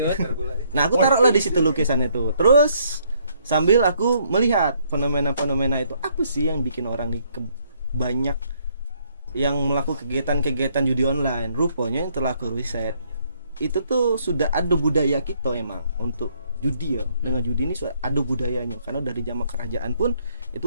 Nah, aku taruhlah di situ lukisan itu. Terus sambil aku melihat fenomena-fenomena itu, apa sih yang bikin orang nih banyak yang melakukan kegiatan-kegiatan judi online. Rupanya yang telah aku riset, itu tuh sudah ada budaya kita emang untuk judi ya. Dengan judi ini sudah ada budayanya, karena dari zaman kerajaan pun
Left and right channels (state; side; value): inverted; both; correlation -0.68